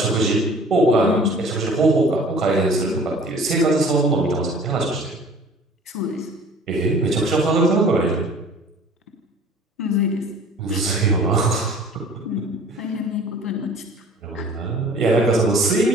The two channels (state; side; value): normal; both; correlation 0.48